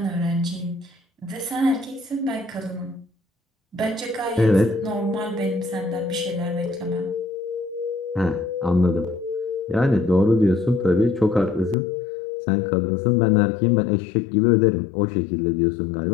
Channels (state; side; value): drops out; right; at 11.8 s